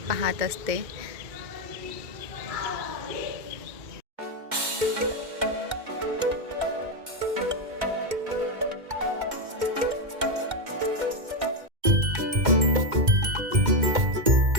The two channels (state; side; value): late; left; 2.1 ms